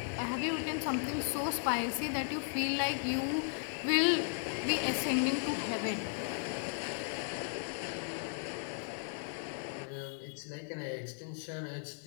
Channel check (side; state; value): right; silent; digital silence